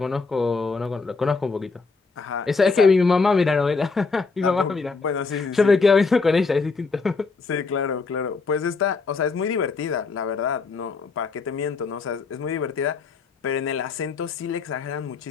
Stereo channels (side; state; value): right; quieter; 4.4 dB